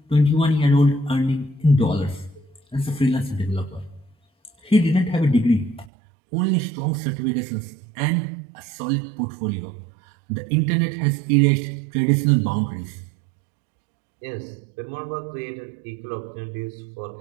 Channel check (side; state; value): left; drops out; at 5.9 s